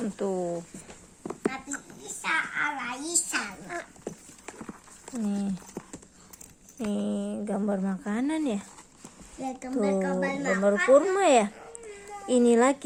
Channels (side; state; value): both; identical; correlation 1.00